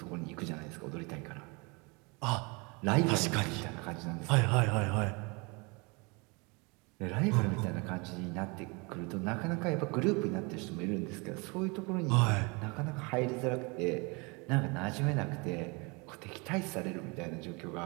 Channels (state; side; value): quieter; left; 29.0 dB